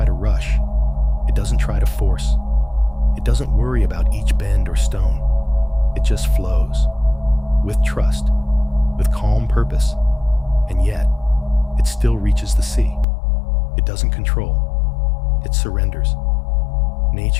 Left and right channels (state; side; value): drops out; right; at 13.1 s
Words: to rush. It doesn't try to force. It doesn't worry about each bend or stone. It just flows, with trust, with calm purpose, and yet it still reaches the sea. It doesn't control. It surrenders.